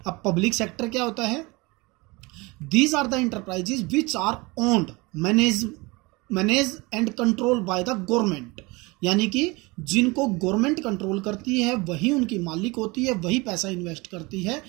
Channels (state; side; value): quieter; left; 24.8 dB